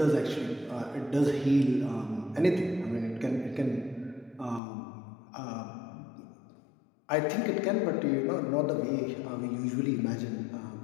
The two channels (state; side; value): drops out; right; at 4.6 s